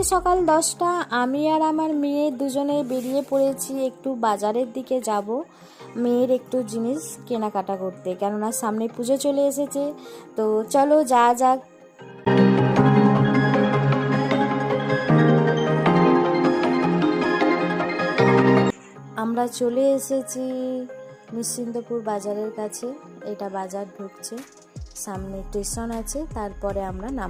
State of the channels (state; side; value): identical; both; correlation 1.00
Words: সকাল 10টা। আমি আর আমার মেয়ে দুজনে বেরিয়ে পড়েছি একটু বাজারের দিকে যাব, মেয়ের একটু জিনিস কেনাকাটা করতে, কেননা সামনে পুজো চলে এসেছে। তো চলো যাওয়া যাক। আমরা চলে এসেছি নিশ্চিন্তপুর বাজারের কাছে। এটা বাজার ঢুকছে, সামনে স্টেশন আছে, তারপরে আমরা